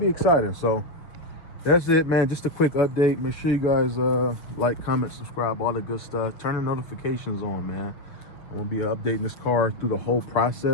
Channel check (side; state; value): right; late; 6.4 ms